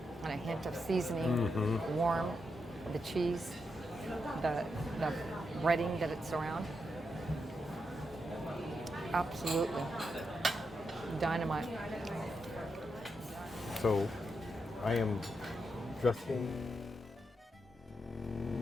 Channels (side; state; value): both; normal; correlation 0.84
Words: and a hint of seasoning, warm, the cheese, the breading that it's around. Absolutely. Dynamite. So I am dressing